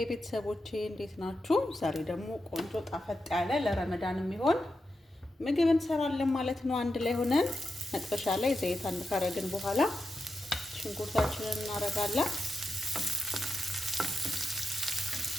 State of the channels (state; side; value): normal; both; correlation 0.88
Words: ቤተሰቦቼ እንዴት ናችሁ? ዛሬ ደግሞ ቆንጆ ጣፈጥ ያለ ለረመዳን የሚሆን ምግብ እንሰራለን ማለት ነው። አንድ ላይ ሆነን መጥበሻ ላይ ዘይት አንድ ካረግን በኋላ ሽንኩርታችንን እናረጋለን።